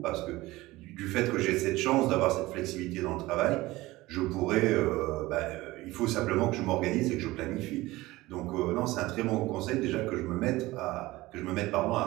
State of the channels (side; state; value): left; quieter; 19.1 dB